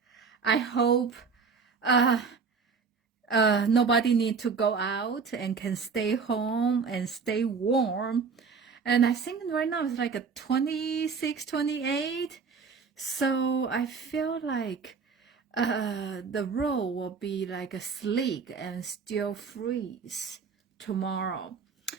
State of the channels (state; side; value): quieter; left; 5.4 dB